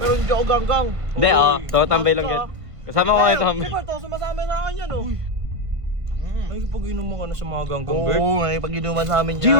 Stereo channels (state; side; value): late; left; 1.4 ms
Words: hindi ako ganggang. Hindi, tambay lang yan. Kasama ko kayo tambay. Siyempre, to, sumasama sa akin yan, oh. Ay, pag-inom mo ka na sa mga ganggang, Bert. Oo, nakipag-inuman sa amin Gio,